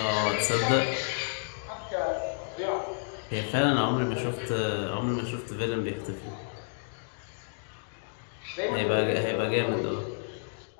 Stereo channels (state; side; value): silent; right; digital silence